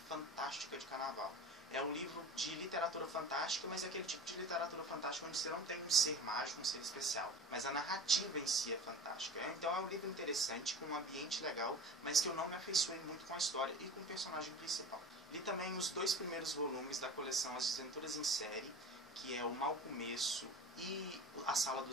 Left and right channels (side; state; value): both; normal; correlation 0.35